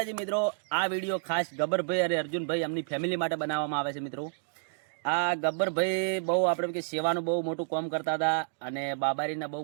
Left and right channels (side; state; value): left; silent; digital silence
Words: મિત્રો, આ વિડીયો ખાસ ગબ્બરભાઈ અને અર્જુનભાઈ એમની ફેમિલી માટે બનાવવામાં આવે છે. મિત્રો, આ ગબ્બરભાઈ બહુ આપણે કે સેવાનું બહુ મોટું કામ કરતા હતા અને બાબારીના બહુ